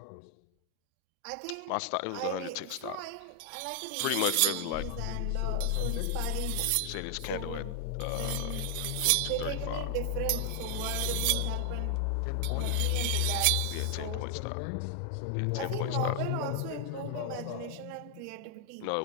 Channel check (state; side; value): different; both; correlation 0.00